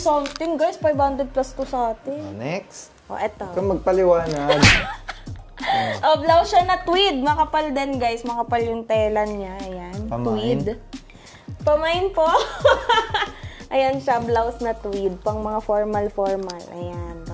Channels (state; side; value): identical; both; correlation 1.00